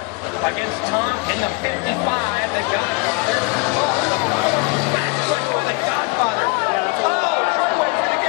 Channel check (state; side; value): quieter; right; 29.0 dB